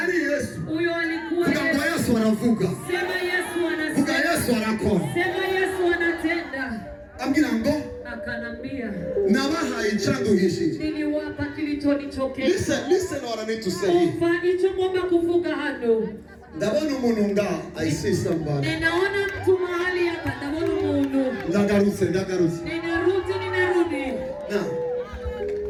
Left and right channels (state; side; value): identical; both; correlation 1.00